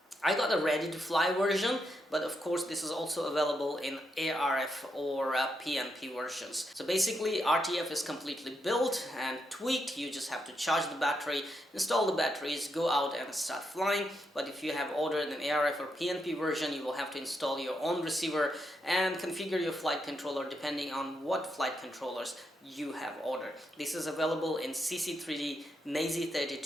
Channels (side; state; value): both; normal; correlation 0.81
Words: I got a ready to fly version, but of course this is also available in ARF or PNP versions. So basically RTF is completely built and tweaked. You just have to charge the battery, install the batteries, go out and start flying. But if you have ordered an ARF or PNP version, you will have to install your own receiver and configure your flight controller depending on what flight controllers you have ordered. This is available in CC3D,